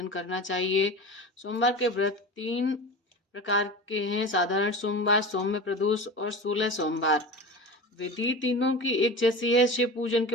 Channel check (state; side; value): normal; both; correlation 0.31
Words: करना चाहिए। सोमवार के व्रत 3 प्रकार के हैं: साधारण सोमवार, सौम्य प्रदोष और 16 सोमवार। विधि तीनों की एक जैसी है। शिव पूजन